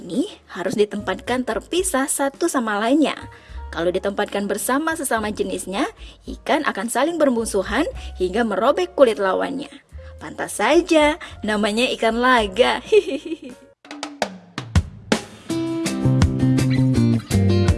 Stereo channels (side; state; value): both; identical; correlation 1.00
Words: harus ditempatkan terpisah satu sama lainnya. Kalau ditempatkan bersama sesama jenisnya, ikan akan saling bermusuhan hingga merobek kulit lawannya. Pantas saja namanya ikan laga.